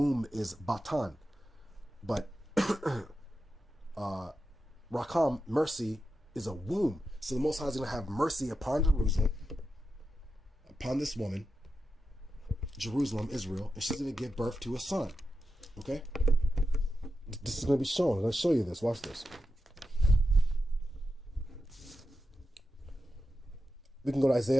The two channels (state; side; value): normal; both; correlation 0.89